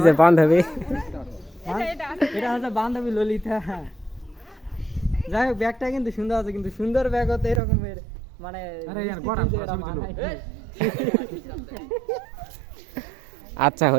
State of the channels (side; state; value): left; drops out; at 7.6 s